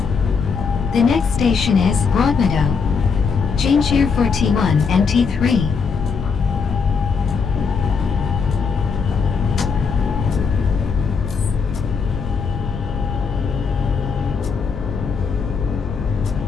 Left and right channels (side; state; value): right; quieter; 5.5 dB